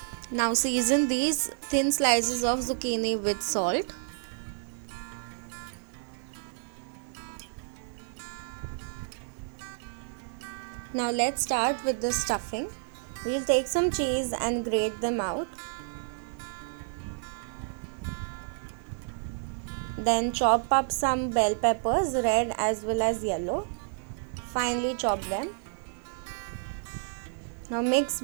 Now season these thin slices of zucchini with salt. Now let's start with the stuffing. We'll take some cheese and grate them out. Then chop up some bell peppers, red as well as yellow. Finely chop them. Now mix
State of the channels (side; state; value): left; silent; digital silence